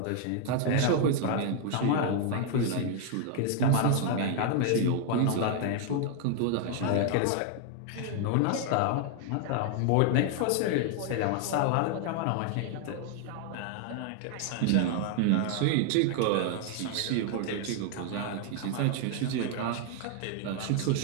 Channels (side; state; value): both; different; correlation 0.00